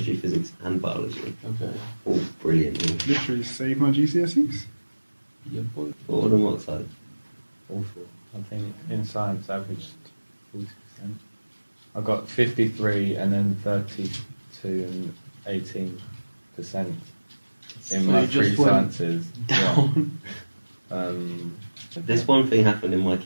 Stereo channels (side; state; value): both; inverted; correlation -1.00